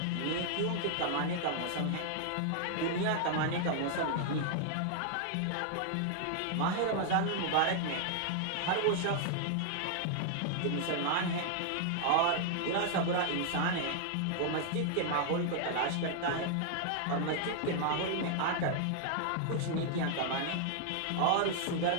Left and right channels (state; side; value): different; both; correlation 0.00